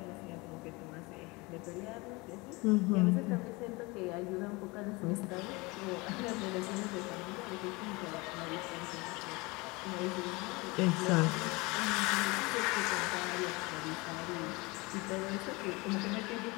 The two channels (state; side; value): quieter; right; 25.0 dB